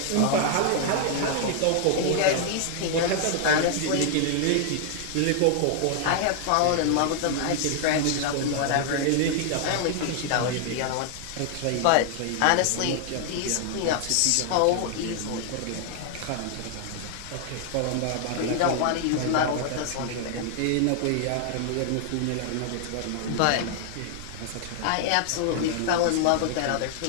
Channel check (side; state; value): both; different; correlation 0.00